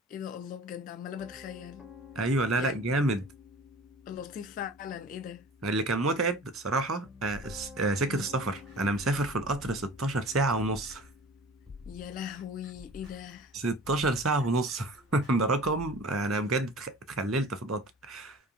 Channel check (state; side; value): normal; both; correlation 0.42